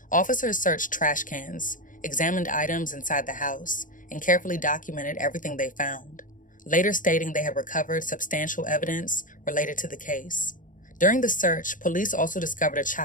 Officers searched trash cans, examined items inside the house, and carefully documented everything they found, later stating they had recovered substantial evidence related to the case. During the search, police also discovered a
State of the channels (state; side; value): late; right; 0.38 ms